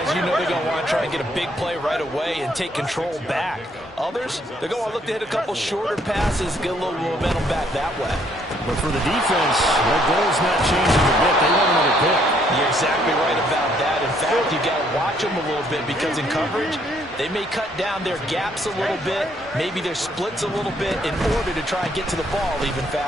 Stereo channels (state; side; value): normal; both; correlation 0.67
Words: you know they're going to want to try and get a big play right away and take control back. Others, they're going to look to hit a couple shorter passes, get a little momentum back that way. But for the defense, their goal's not changing a bit. They want another pick. You're exactly right about that. In fact, you've got to watch them a little bit because in coverage, they may cut down their gaps a little bit, maybe their splits a little bit in order to try and get to the ball even